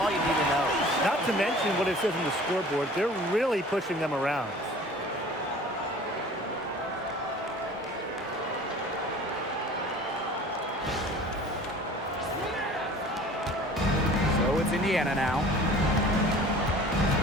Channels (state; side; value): normal; both; correlation 0.45